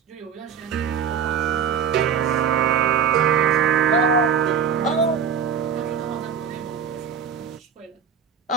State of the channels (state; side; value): quieter; left; 7.1 dB